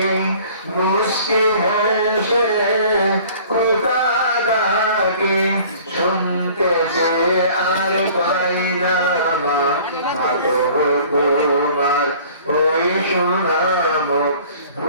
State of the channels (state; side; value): inverted; both; correlation -0.50